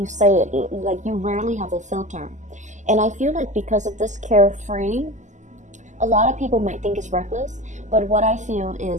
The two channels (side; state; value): left; late; 0.35 ms